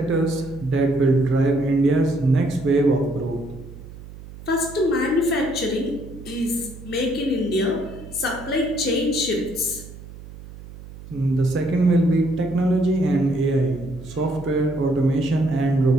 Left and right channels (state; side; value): noise; right; hum, 16 dB below the sound